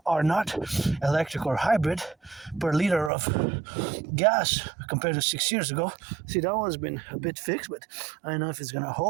are not electric or hybrid, per liter of gas compared to 6 years ago. See, that one's been a bit fixed, but I don't know if it's going to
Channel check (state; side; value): drops out; left; at 3.1 s